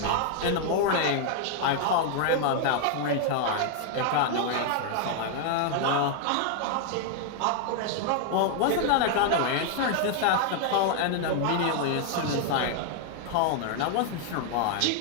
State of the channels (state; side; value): different; both; correlation 0.00